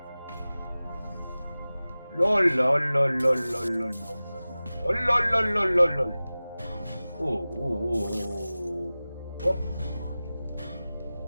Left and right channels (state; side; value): inverted; both; correlation -0.97